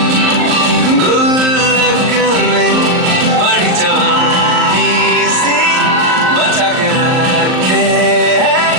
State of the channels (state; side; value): late; left; 38 ms